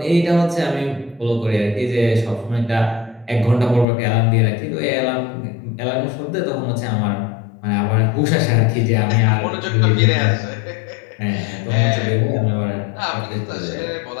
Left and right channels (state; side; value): drops out; right; at 3.9 s